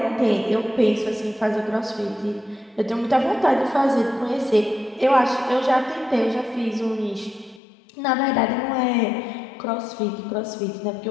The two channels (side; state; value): right; drops out; at 7.6 s